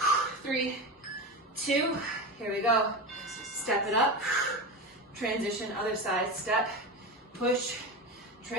3, 2. Here we go. Step it up. Transition, other side. Step. Push.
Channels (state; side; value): normal; both; correlation 0.21